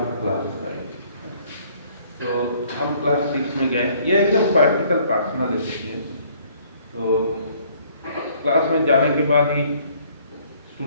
क्लास था. तो हम क्लास 6 में गए. ये एकदम प्रैक्टिकल पर्सनल एक्सपीरियंस. तो क्लास में जाने के बाद ही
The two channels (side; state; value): both; inverted; correlation -0.61